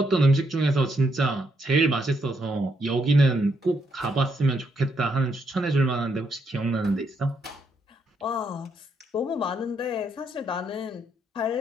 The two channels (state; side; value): normal; both; correlation 0.76